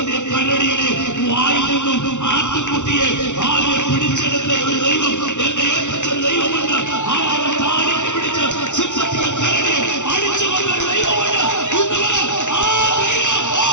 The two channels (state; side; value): late; right; 0.85 ms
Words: കരടിയുടെ വായിൽ നിന്നും ആട്ടുകുട്ടിയെ ആളുകൾ പിടിച്ചെടുത്ത ഒരു ദൈവം, എന്റെ ഏറ്റവും ദൈവമുണ്ട്. ആളുകളെ താടിക്ക് പിടിച്ച് സിംഹത്തിന്റെ കരടിയെ അടിച്ചു കൊണ്ട ഒരു ദൈവമുണ്ട്.